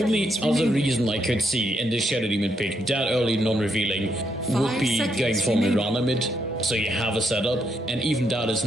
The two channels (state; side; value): normal; both; correlation 0.78